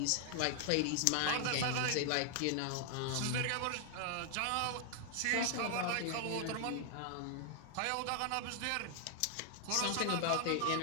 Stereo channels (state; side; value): different; both; correlation 0.00